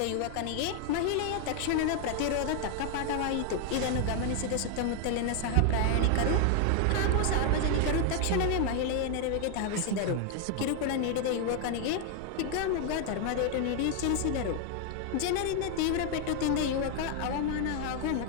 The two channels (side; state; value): both; different; correlation 0.00